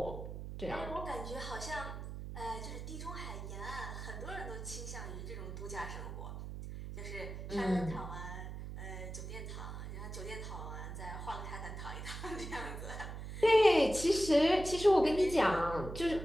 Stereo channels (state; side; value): noise; right; hum, 8 dB below the sound